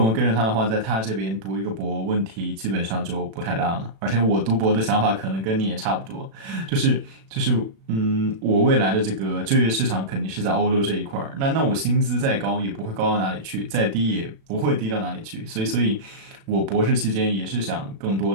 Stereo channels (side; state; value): left; late; 36 ms